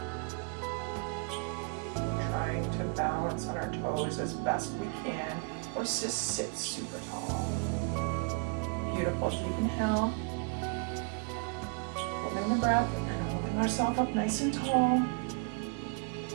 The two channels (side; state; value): left; quieter; 35.0 dB